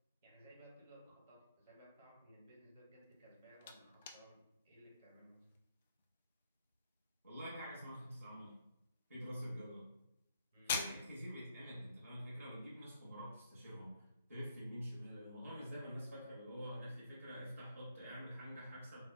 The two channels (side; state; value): both; inverted; correlation -0.73